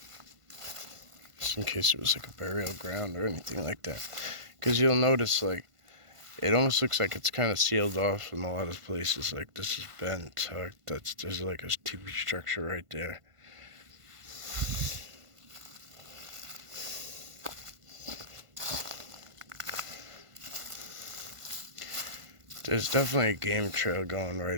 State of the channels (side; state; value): left; late; 1.5 ms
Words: Just in case it was like a burial ground or anything like that. Because you'll notice, like, it almost looks like it's kind of sealed off in a lot of places. Like, this is bent, tucked. There's like a TV structure right there. There's definitely a game trail going